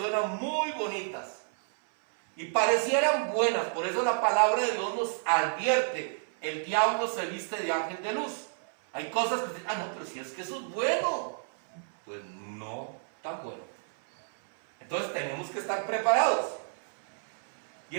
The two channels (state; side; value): silent; left; 58 dB below the other